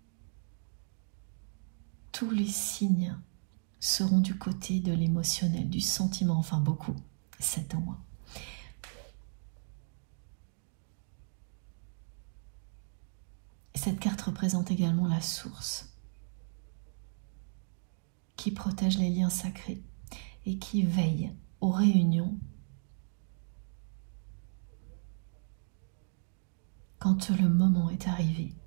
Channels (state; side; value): silent; left; digital silence